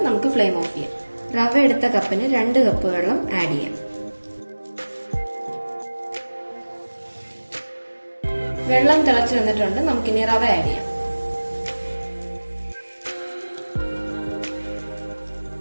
നമുക്ക് ഫ്ലെയിം ഓഫ് ചെയ്യാം. റവ എടുത്ത കപ്പിന് 2 കപ്പ് വെള്ളം ആഡ് ചെയ്യാം. വെള്ളം തിളച്ചു വന്നിട്ടുണ്ട്. നമുക്കിനി റവ ആഡ് ചെയ്യാം.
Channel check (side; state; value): both; inverted; correlation -1.00